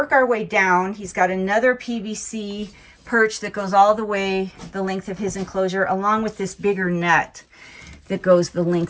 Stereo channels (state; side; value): identical; both; correlation 1.00